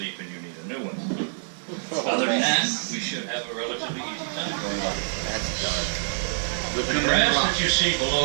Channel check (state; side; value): silent; left; digital silence